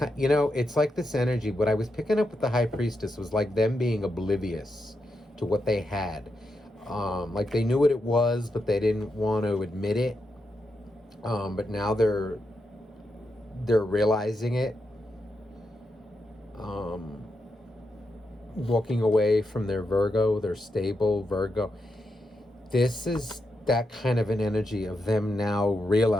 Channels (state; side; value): normal; both; correlation 0.85